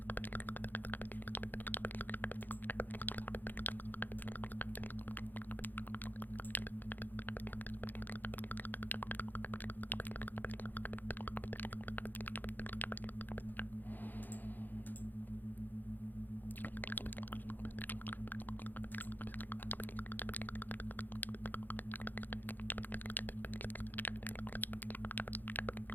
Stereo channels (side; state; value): right; late; 0.087 ms